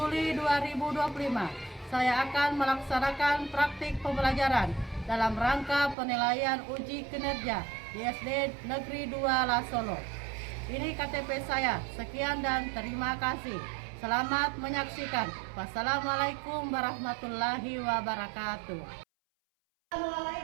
2025, saya akan melaksanakan praktik pembelajaran dalam rangka penilaian uji kinerja di SD Negeri 2 Lasolo. Ini KTP saya. Sekian dan terima kasih. Selamat menyaksikan. Wassalamualaikum warahmatullahi wabarakatuh.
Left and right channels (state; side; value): drops out; left; at 6.0 s